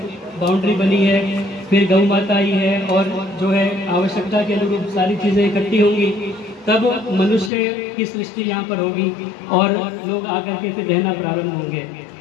बाउंड्री बनी है, फिर गौ माता आई है, और जो है आवश्यकता के अनुरूप सारी चीज़ें इकट्ठी होंगी, तब मनुष्य की सृष्टि यहाँ पर होगी और लोग आकर के फिर रहना प्रारंभ होंगे।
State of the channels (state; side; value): drops out; right; at 7.5 s